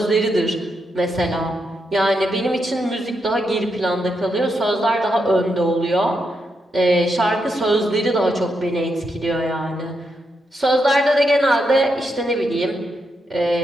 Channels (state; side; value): normal; both; correlation 0.82